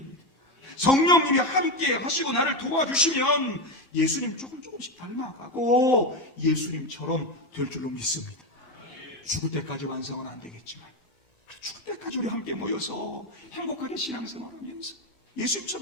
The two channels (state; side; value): late; right; 1.9 ms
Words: 성령님이 함께 하시고 나를 도와주시면 예수님 조금씩 닮아가고 예수님처럼 될 줄로 믿습니다. 죽을 때까지 완성은 안 되겠지만 죽을 때까지 우리 함께 모여서 행복하게 신앙생활하면서